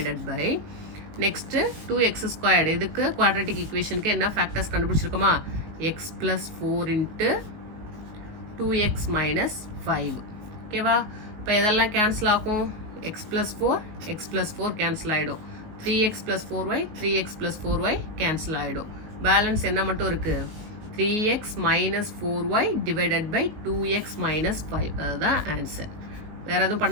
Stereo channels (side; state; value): left; late; 19 ms